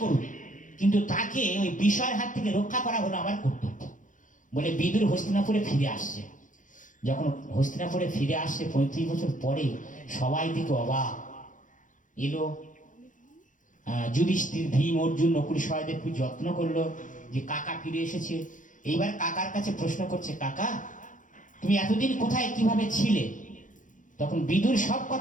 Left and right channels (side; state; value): right; late; 0.37 ms